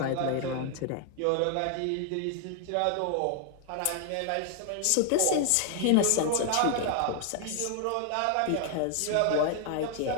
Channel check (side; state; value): both; different; correlation 0.00